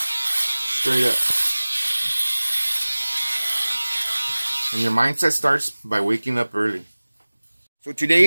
Straight up. And your mindset starts by waking up early. So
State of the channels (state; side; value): inverted; both; correlation -1.00